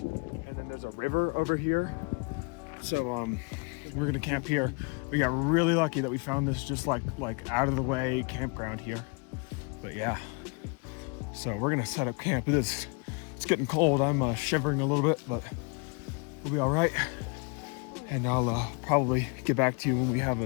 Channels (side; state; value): right; quieter; 33.9 dB